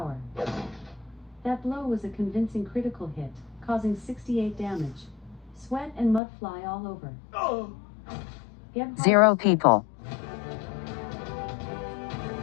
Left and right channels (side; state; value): right; drops out; at 6.2 s